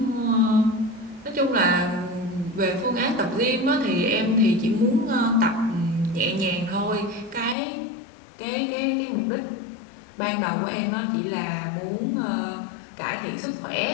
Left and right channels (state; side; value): drops out; right; at 7.6 s